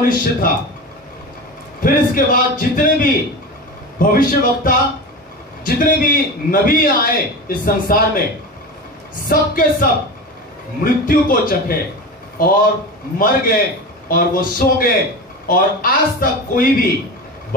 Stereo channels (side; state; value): both; normal; correlation 0.26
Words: था। फिर इसके बाद जितने भी भविष्यवक्ता, जितने भी नबी आए इस संसार में, सबके सब मृत्यु को चखे और मर गए और वो सो गए और आज तक कोई भी